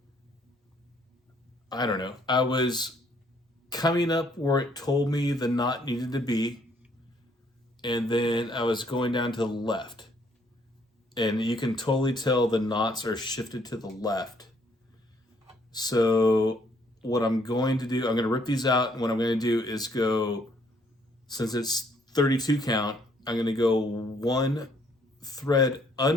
I don't know, I was coming up where it told me the knot needed to be, and then I was going down to the left, and you can totally tell the knots are shifted to the left. So what I'm going to do, I'm going to rip these out, and what I'm going to do is go, since it's 32 count, I'm going to go 1 thread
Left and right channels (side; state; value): both; normal; correlation 0.66